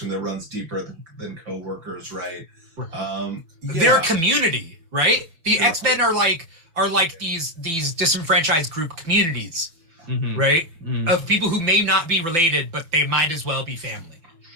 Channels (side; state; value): left; late; 6.1 ms